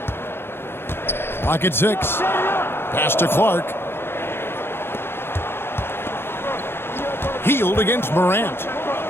Clock at 6. Pass to Clark. Hield against Morant.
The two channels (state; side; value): late; right; 0.11 ms